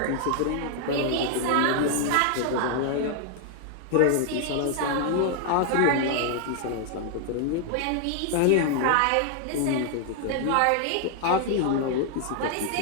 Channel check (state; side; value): different; both; correlation 0.00